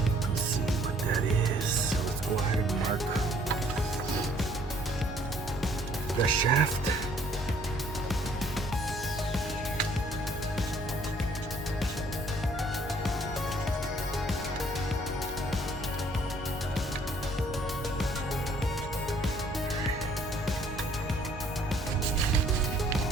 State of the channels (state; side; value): normal; both; correlation 0.61